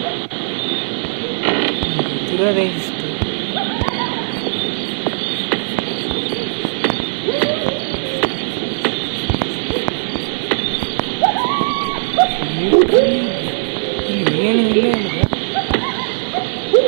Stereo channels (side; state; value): left; silent; 67 dB below the other